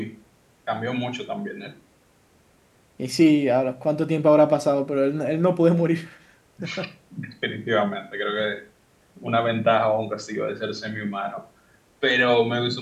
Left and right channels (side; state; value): both; identical; correlation 1.00